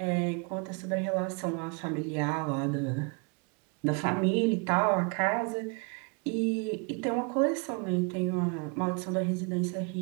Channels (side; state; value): left; quieter; 34.2 dB